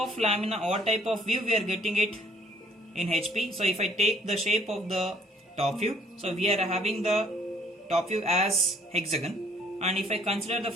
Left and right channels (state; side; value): normal; both; correlation 0.61